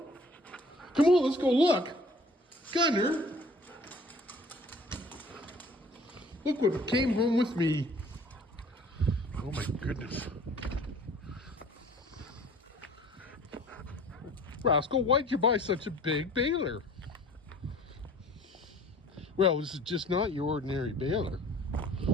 Come on, let's go look. Gunner, look what came home with me. Oh my goodness. Rascal, why'd you buy such a big baler? Well, this is just not your ordinary baler.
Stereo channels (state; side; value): normal; both; correlation 0.50